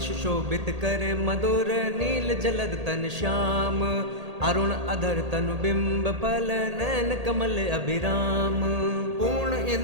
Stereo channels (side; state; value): left; late; 1.8 ms